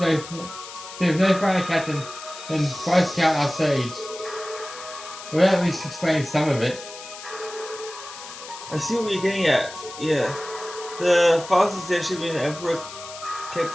finer captain than Vice Count our sage. We'll at least explain some of it. I see what you're getting at. Yeah. The fastest airship in the Emperor kept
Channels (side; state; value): left; noise; hiss, 13 dB below the sound